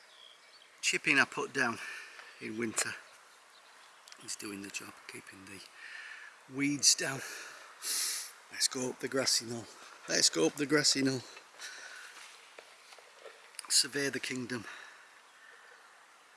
Chipping I put down in winter is doing the job, keeping the weeds down. Let's go up the Grassy Knoll. Let's go up the Grassy Knoll. Survey the kingdom.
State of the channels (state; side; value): identical; both; correlation 1.00